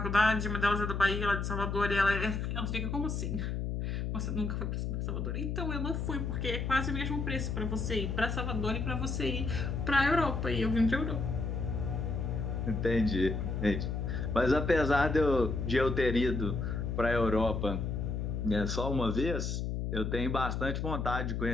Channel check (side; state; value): left; noise; hum, 2 dB below the sound